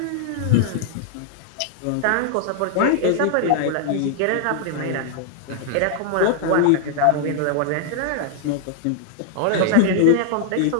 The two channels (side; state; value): both; different; correlation -0.01